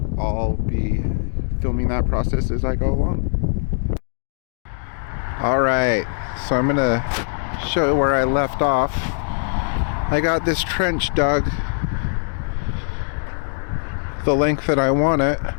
I'll be filming that process as I go along. Alright, so I'm going to show you where I left off. I got this trench dug the length that I want it.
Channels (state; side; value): silent; right; 65 dB below the other